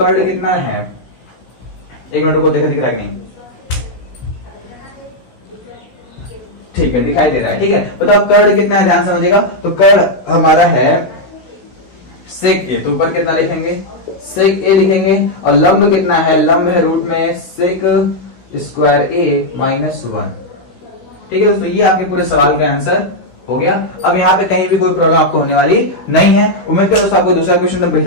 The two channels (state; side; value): late; right; 16 ms